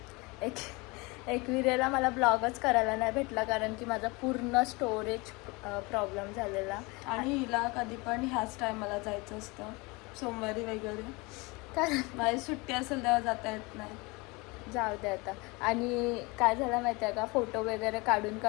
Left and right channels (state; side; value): quieter; right; 25.8 dB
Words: एकविरेला मला ब्लॉगच करायला नाही भेटला, कारण की माझा पूर्ण स्टोरेज प्रॉब्लेम झालेला. आणि हिला कधी पण ह्याच टायमाला जायचं असतं, सोमवारी वगैरे, कारण माझी सुट्टी असेल तेव्हा जाता येत नाही. जाऊ दे आता. आणि काय झालं माहिती आहे का, फोटो वगैरे